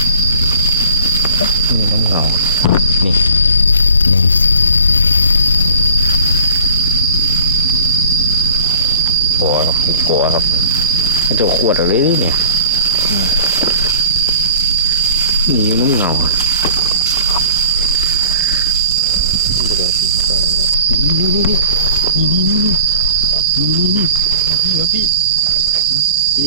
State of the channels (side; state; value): both; inverted; correlation -0.46